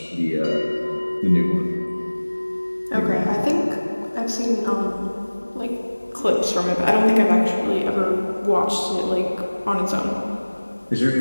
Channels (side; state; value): both; inverted; correlation -1.00